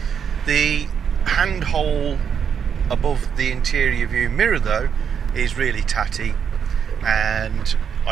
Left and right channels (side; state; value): left; quieter; 7.5 dB